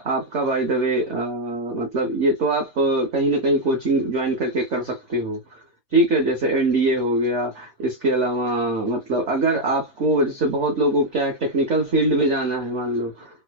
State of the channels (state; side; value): normal; both; correlation 0.01